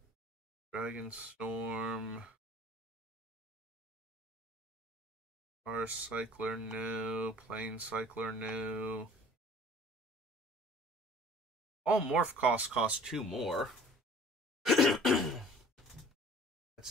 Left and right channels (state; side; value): normal; both; correlation 0.49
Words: Dragon Storm. Star Cycler, no. Plane Cycler, no. All morph costs cost 2 more. That